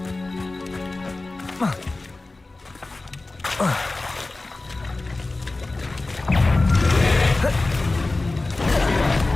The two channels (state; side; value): quieter; right; 3.2 dB